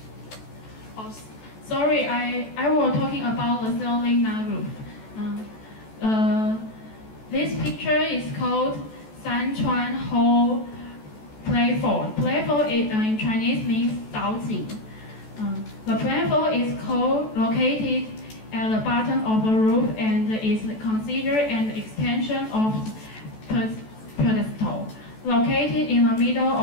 Oh, sorry, I was talking about the ceiling, not roof. This picture is called 山川后 platform. Platform in Chinese means 岛井. The platform is located at the bottom of the roof and is considered an extension of pedestal. Located in the middle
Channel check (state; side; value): late; right; 14 ms